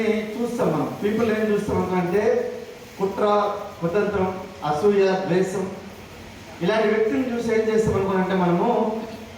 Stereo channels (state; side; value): identical; both; correlation 1.00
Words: చూస్తాం మనం. పీపుల్ ఏం చూస్తాం అనుకుంటే కుట్ర, కుతంత్రం, అసూయ, ద్వేషం ఇలాంటి వ్యక్తులను చూసి ఏం చేస్తాం అనుకుంటే మనము